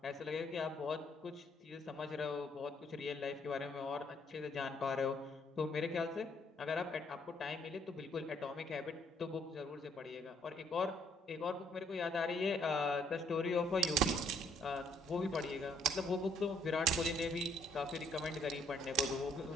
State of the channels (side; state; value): both; normal; correlation 0.67